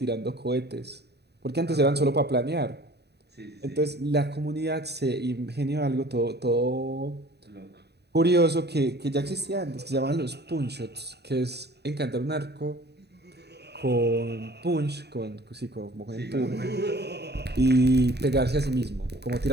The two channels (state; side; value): late; left; 0.48 ms